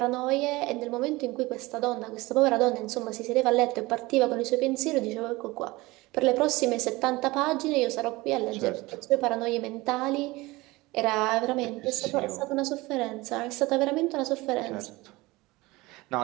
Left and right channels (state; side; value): quieter; left; 21.3 dB